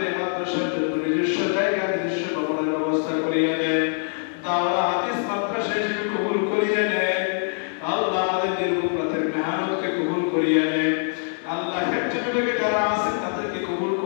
মাদ্রাসার জন্য নিজস্ব জায়গা নিজস্ব ভবনের ব্যবস্থা করিয়ে দেন, দাওরা হাদিস মাদ্রাসা হিসেবে কবুল করিয়ে নেন আল্লাহ। আমাদের নির্মূলতার মেহনতকে কবুল করিয়ে নেন আল্লাহ। ফ্যাক্টরি যারা আছেন তাদেরকে কবুল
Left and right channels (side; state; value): right; silent; 57 dB below the other